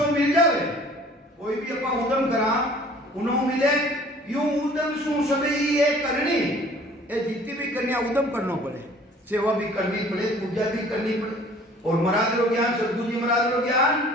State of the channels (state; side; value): normal; both; correlation 0.51